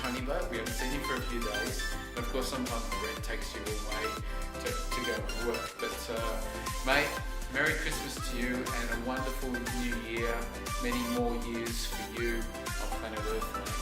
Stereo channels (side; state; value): both; identical; correlation 1.00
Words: Bow? We haven't seen him for a few days. And of course, sometimes Brett takes you away to go to work. But mate, Merry Christmas to you and a wonderful new year. Many more years for you on planet Earth,